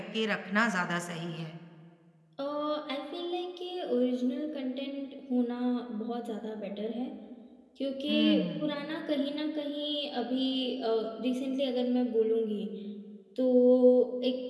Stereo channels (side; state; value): both; identical; correlation 1.00